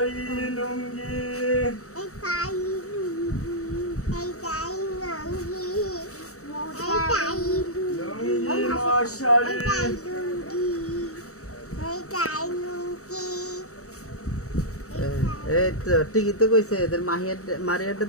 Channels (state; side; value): late; right; 0.65 ms